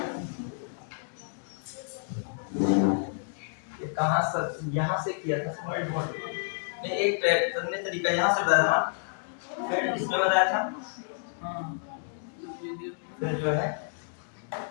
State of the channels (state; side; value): silent; right; digital silence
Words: ये कहां से यहां से किया था स्मार्ट बोर्ड ने एक करने तरीका यहां से बताया था, फिर इसमें बताया था, फिर जो है